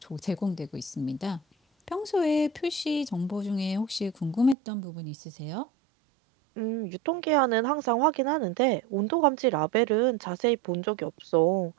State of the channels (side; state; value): left; drops out; at 4.5 s